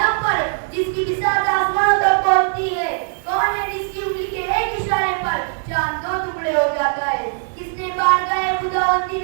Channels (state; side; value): silent; left; digital silence